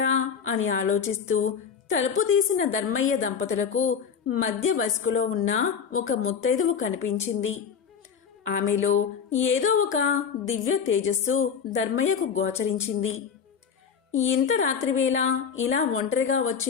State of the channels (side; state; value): right; quieter; 6.9 dB